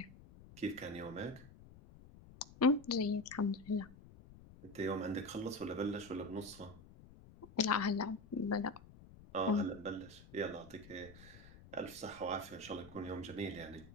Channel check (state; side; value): noise; left; rumble, 19 dB below the sound